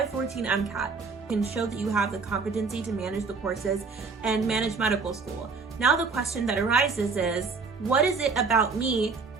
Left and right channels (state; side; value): quieter; left; 4.7 dB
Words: MCAT. Can show that you have the competency to manage the courses and manage medical school. Now the question that arises is, what is it about me